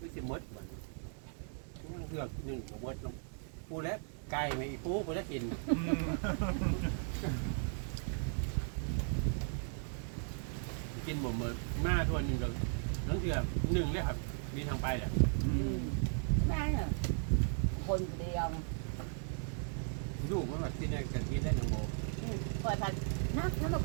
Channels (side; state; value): left; silent; 53 dB below the other